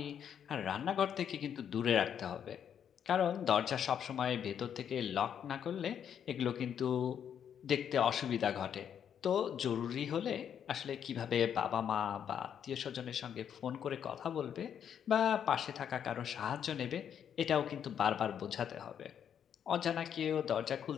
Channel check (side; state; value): right; quieter; 8.6 dB